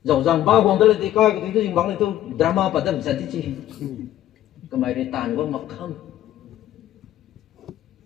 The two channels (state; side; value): quieter; right; 12.9 dB